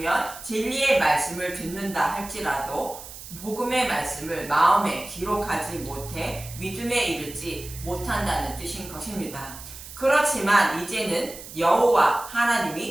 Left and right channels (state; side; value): noise; right; hiss, 14 dB below the sound